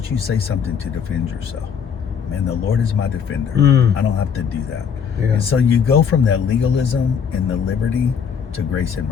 you say something to defend yourself? Man, the Lord is my defender. I don't have to do that. And so you go from that legalism and the liberty to grace and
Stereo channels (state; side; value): quieter; right; 7.0 dB